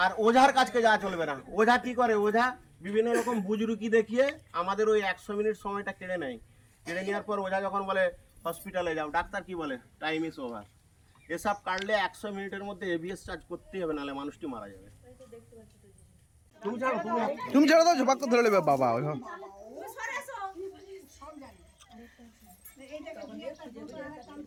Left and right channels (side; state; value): both; identical; correlation 1.00